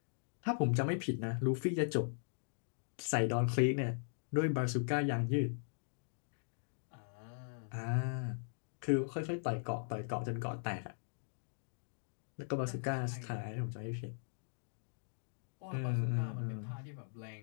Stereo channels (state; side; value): silent; right; digital silence